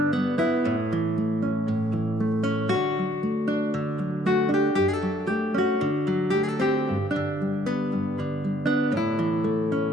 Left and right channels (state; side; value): normal; both; correlation 0.65